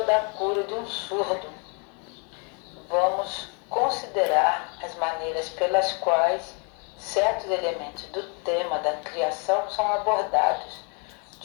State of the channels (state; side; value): quieter; right; 36.4 dB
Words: cura de um surdo. Vamos considerar as maneiras pelas quais certos elementos do tema da criação são abordados